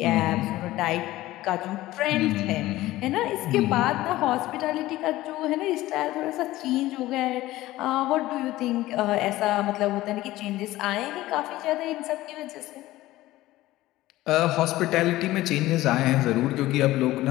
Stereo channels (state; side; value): quieter; right; 16.7 dB